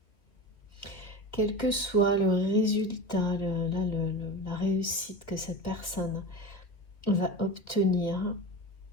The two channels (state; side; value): late; right; 2.3 ms